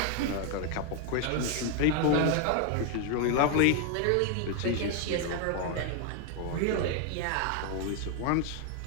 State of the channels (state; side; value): different; both; correlation 0.01